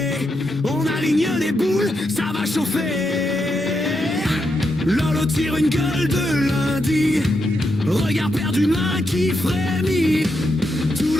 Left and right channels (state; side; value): normal; both; correlation 0.83